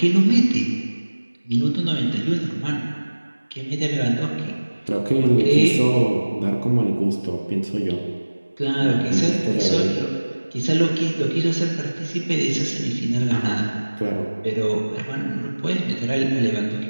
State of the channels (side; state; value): both; inverted; correlation -1.00